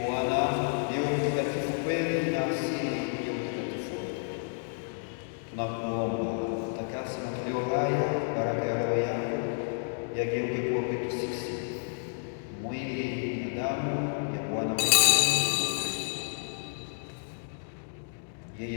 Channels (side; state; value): right; silent; digital silence